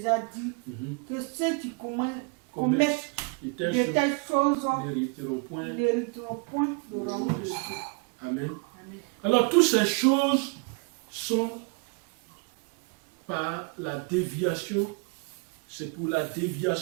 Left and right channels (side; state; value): left; quieter; 32.0 dB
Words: dit, que ceux qui commettent de telles choses n'hériteront point le royaume de Dieu. Amen. Alors toutes ces choses sont par la déviation, c'est pour la